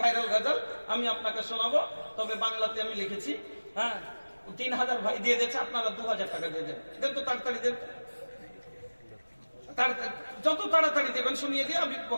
ভাইরাল গজল আমি আপনাকে শোনাবো, তবে বাংলাতে আমি লিখেছি। হ্যাঁ, 3000 ভাই দিয়ে দিয়েছে, আপনারা 2000 টাকা দিয়ে দেন। দেন তো তাড়াতাড়ি দেন, যত তাড়াতাড়ি দেবেন শুনিয়ে দিয়ে আমি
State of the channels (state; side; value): inverted; both; correlation -1.00